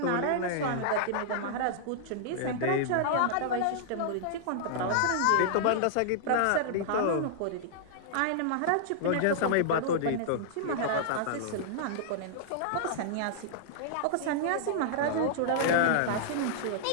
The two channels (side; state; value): both; different; correlation -0.02